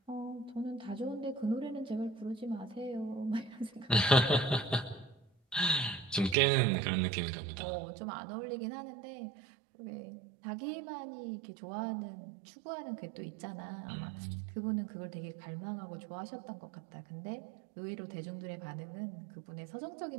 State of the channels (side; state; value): left; drops out; at 6.4 s